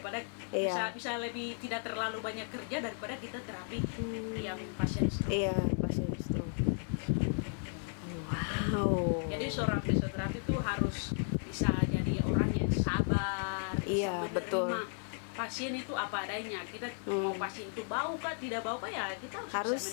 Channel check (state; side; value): silent; right; 55 dB below the other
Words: Iya. bisa lebih tidak terlalu banyak kerja daripada kita terapi yang pasien stroke. Iya, pasien stroke. Wow. Jadi seorang fisioterapi itu harus bisa jadi orang yang sabar, Iya, bisa menerima betul. pasien itu apa adanya. Kita mau pasien itu bau kah, tidak bau kah, ya kita Harus,